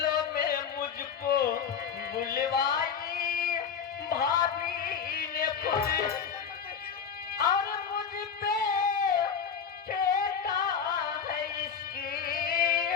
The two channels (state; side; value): quieter; right; 7.0 dB